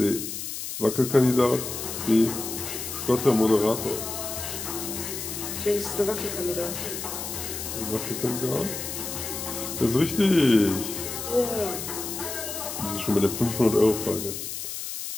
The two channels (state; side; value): noise; left; hiss, 6 dB below the sound